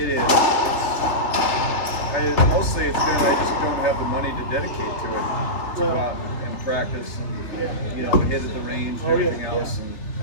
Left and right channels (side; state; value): right; late; 3.3 ms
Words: is. Mostly it's been I just don't have the money to dedicate to it. To go out and practice and hit at the range and everything else, and